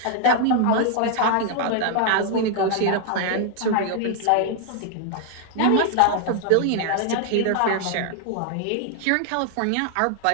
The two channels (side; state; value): both; different; correlation 0.00